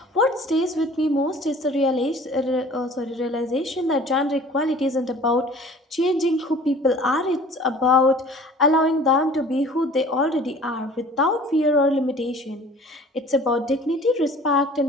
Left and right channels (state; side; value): normal; both; correlation 0.48